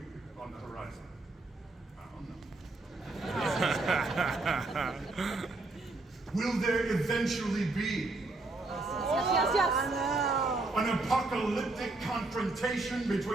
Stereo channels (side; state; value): left; quieter; 3.2 dB